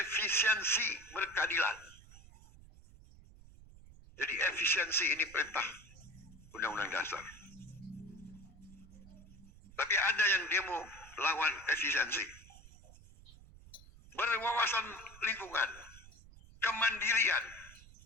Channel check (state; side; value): noise; right; rumble, 20 dB below the sound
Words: efisiensi, berkeadilan. Jadi efisiensi ini perintah Undang-Undang Dasar. Tapi ada yang demo lawan efisiensi. Berwawasan lingkungan, kemandirian,